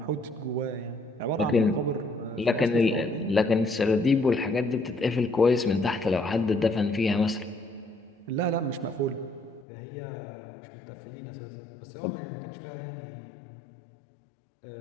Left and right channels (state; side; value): drops out; right; at 9.7 s